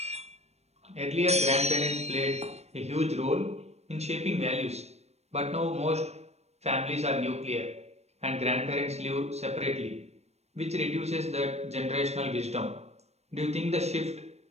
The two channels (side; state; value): left; late; 0.31 ms